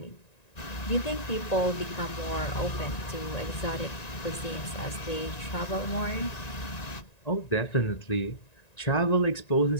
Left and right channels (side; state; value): right; late; 1.9 ms